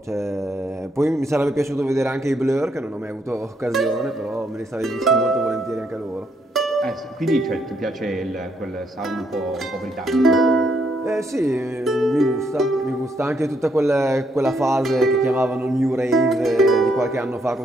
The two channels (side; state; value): both; normal; correlation 0.74